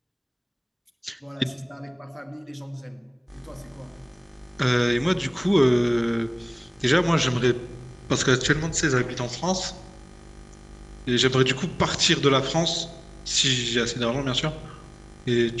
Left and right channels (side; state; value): both; identical; correlation 1.00